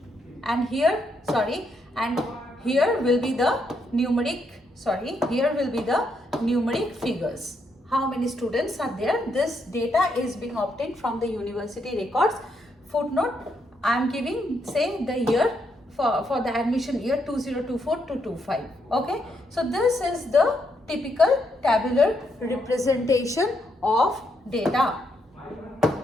And here, and here will be the numeric, here will be the numeric figures. How many students are there? This data is being obtained from the university records. Footnote: I am giving, say, the year for the admission year 2024 to 25. Okay, so this is the typical tabular representation of data.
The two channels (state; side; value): normal; both; correlation 0.78